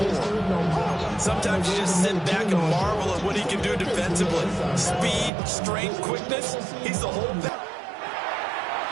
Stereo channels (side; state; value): left; drops out; at 5.3 s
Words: Sometimes you just sit back and marvel at what he can do defensively. Speed, strength, quickness. He's the whole thing.